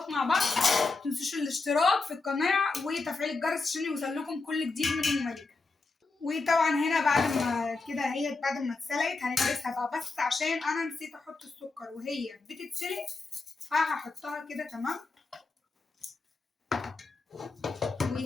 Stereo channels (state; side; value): quieter; right; 3.8 dB